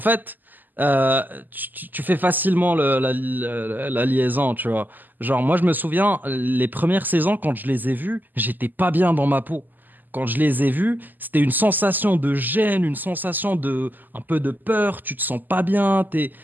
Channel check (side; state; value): left; late; 0.087 ms